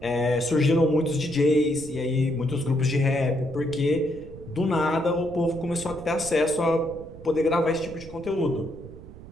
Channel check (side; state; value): right; noise; rumble, 16 dB below the sound